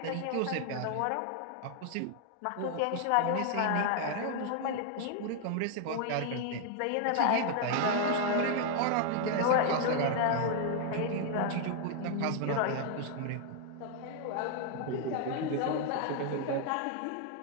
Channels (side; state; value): both; different; correlation 0.00